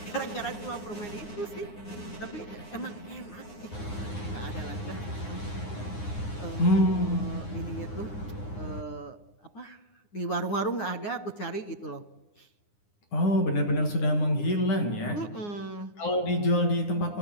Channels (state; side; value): late; right; 9.7 ms